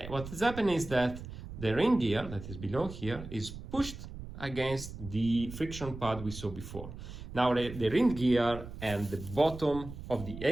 is happening is that the ring gear that is below here is pushed against the friction pad we saw before. Now the ring gear and the bottom of the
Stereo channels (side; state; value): right; noise; rumble, 11 dB below the sound